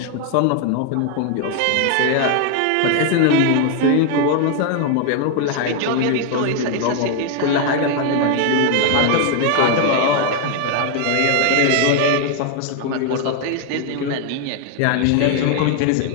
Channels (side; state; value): both; different; correlation 0.01